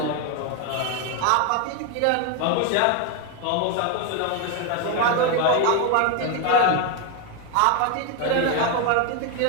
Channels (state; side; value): different; both; correlation 0.01